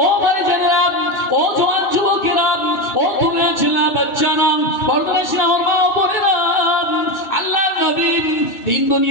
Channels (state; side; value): late; right; 2.2 ms